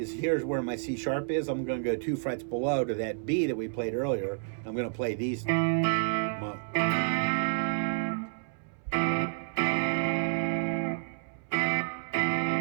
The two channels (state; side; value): silent; left; 58 dB below the other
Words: here's where my C sharp is. I'm going to go 2 frets below to that B that we played earlier. I'm going to play these.